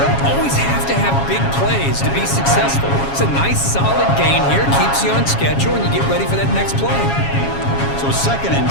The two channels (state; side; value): late; right; 7.3 ms